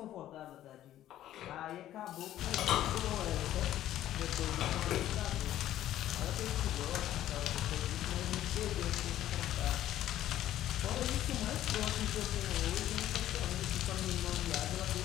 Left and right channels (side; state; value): right; quieter; 12.8 dB